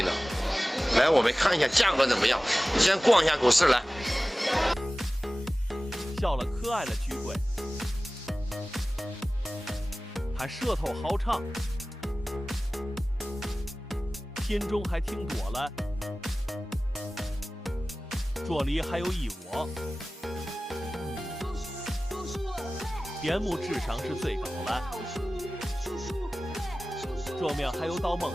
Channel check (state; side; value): normal; both; correlation 0.97